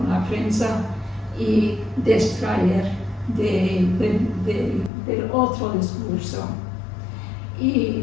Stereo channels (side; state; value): right; drops out; at 4.9 s